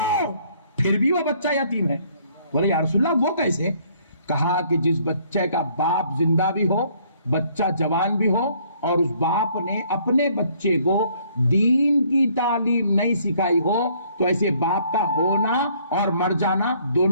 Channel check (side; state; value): both; inverted; correlation -0.63